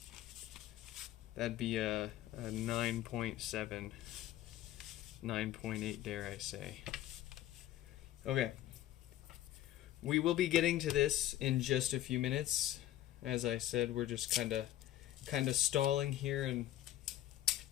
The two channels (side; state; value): right; quieter; 13.6 dB